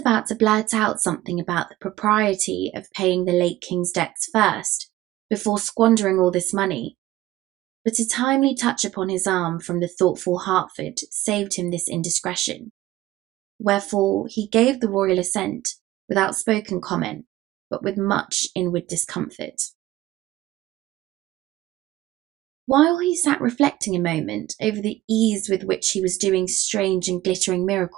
to blurt out something about the propriety of paying the late King's debts first, before squandering all this money, but a timely touch upon his arm from the thoughtful Hertford saved him this indiscretion, wherefore he gave the royal assent without spoken comment, but with much inward discomfort. While he sat reflecting a moment over the ease with which he was doing strange and glittering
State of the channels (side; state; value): left; quieter; 15.6 dB